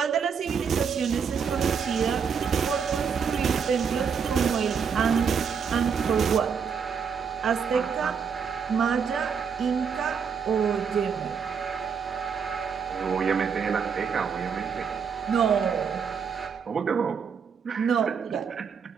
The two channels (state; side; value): quieter; left; 6.5 dB